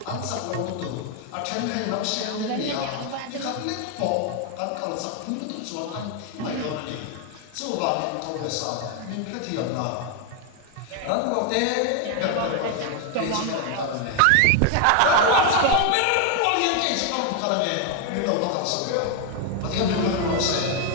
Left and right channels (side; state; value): both; different; correlation 0.00